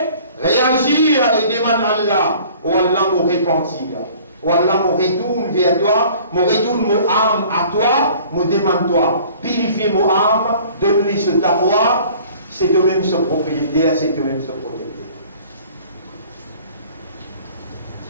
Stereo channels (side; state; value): both; inverted; correlation -0.50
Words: réagir et demande à Allah. Oh Allah me repentir. Oh Allah me retourne vers toi, me retourne mon âme à toi, me demande toi. Purifie mon âme, donne-lui ce taqwa, c'est toi-même ce propriétaire, c'est toi-même ce protecteur.